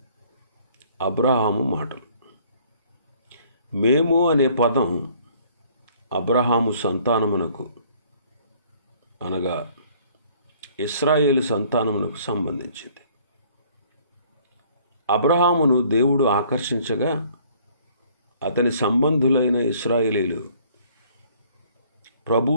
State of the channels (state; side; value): inverted; both; correlation -0.58